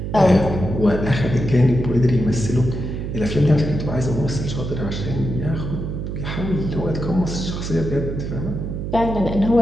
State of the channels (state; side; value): noise; right; hum, 5 dB below the sound